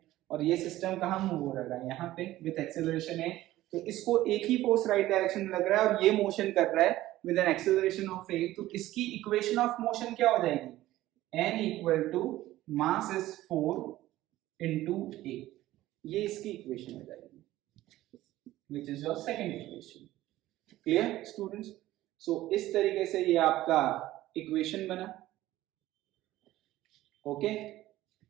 और ये सिस्टम कहां मूव हो रहा है? यहाँ पे विद एक्सेलरेशन है. तो इसको एक ही फोर्स राइट डायरेक्शन में लग रहा है और ये मोशन कर रहा है with an acceleration of a. तो इसकी इक्वेशन ऑफ मोशन क्या हो जाएगी? n equal to mass is 4 into a. ये इसकी इक्वेशन हो जाएगी, which is your second equation. Clear students? So इस तरीके से ये आपका इक्वेशन बना. Okay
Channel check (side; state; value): left; quieter; 15.6 dB